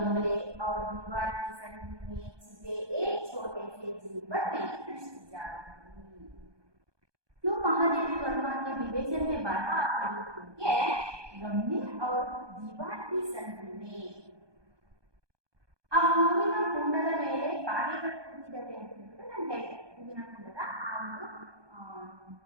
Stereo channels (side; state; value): left; late; 1.2 ms